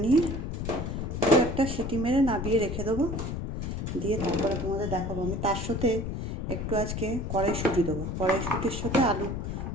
নিয়ে একটা সিটি মেরে নাবিয়ে রেখে দেবো। দিয়ে তারপরে তোমাদের দেখাবো। আমি তার সাথে একটু আজকে কড়াইশুঁটি দেবো। কড়াইশুঁটির সাথে আলু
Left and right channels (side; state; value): left; noise; rumble, 4 dB below the sound